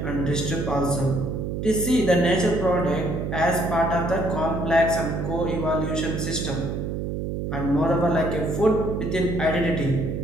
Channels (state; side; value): noise; right; hum, 3 dB below the sound